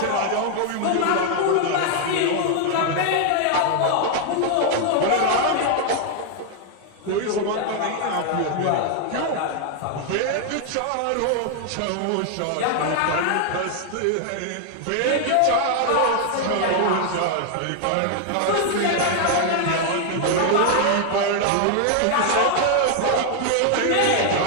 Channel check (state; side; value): different; both; correlation 0.00